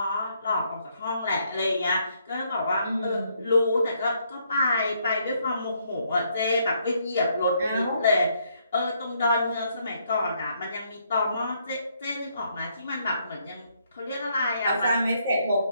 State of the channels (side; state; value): both; inverted; correlation -0.72